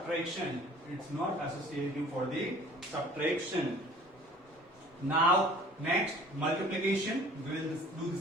It's not associative for the subtraction. Now next multiplication. We will do the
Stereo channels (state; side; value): normal; both; correlation 0.49